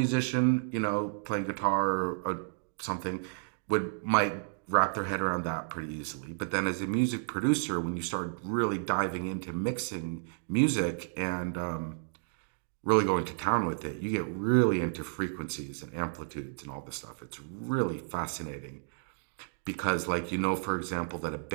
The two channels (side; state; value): left; silent; digital silence